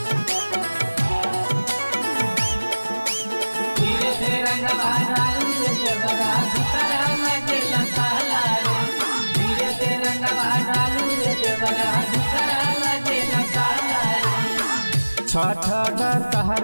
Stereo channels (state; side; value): inverted; both; correlation -1.00